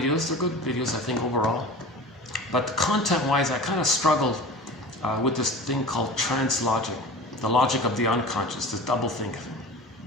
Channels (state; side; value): normal; both; correlation 0.36